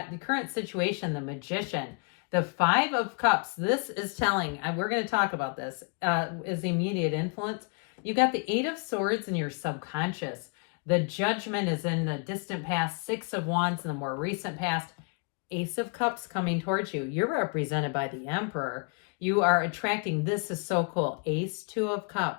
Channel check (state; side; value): quieter; right; 36.3 dB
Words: the current situation, the Magician, the Five of Cups. This is telling, and we're going to talk about this, is immediate influence. You got the Eight of Swords in your subconscious. The Judgment is in the distant past, Six of Wands in the more recent past. Ace of Cups coming towards you. You're represented by the Emperor. You are attracting, this is so cool, Ace, Two of